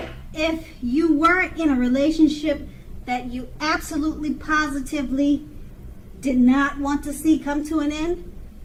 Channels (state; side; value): identical; both; correlation 1.00